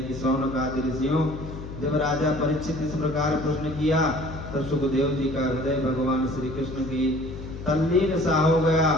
कि शौनक आदि ऋषियों जब राजा परीक्षित इस प्रकार प्रश्न किया, तब सुखदेव जी का हृदय भगवान श्री कृष्ण की तल्लीन सा हो गया।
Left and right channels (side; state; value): left; noise; hum, 10 dB below the sound